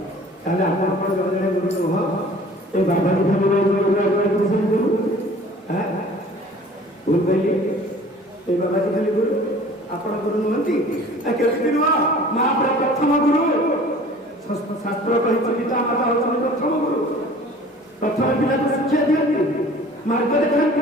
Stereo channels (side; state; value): both; normal; correlation 0.47